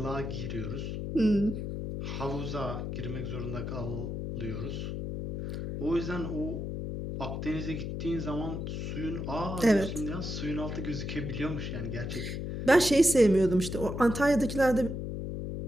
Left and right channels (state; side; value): noise; left; hum, 4 dB below the sound